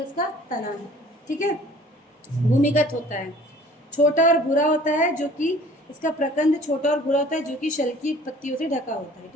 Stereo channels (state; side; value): normal; both; correlation 0.50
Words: उसका तना है। ठीक है, भूमिगत होता है। छोटा और भूरा होता है, जो कि इसका प्रकंद छोटा और भूरा होता है, जो कि शल की पत्तियों से ढका होता है।